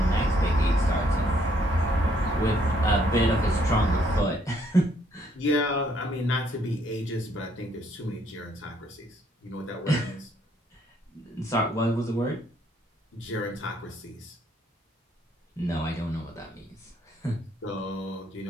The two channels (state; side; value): normal; both; correlation 0.68